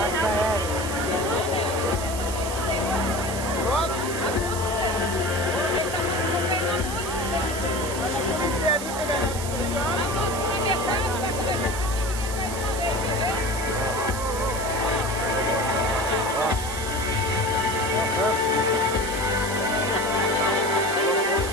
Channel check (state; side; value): noise; right; hiss, 9 dB below the sound